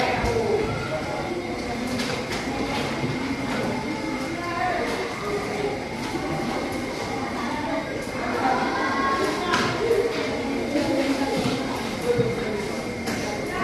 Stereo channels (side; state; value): both; identical; correlation 1.00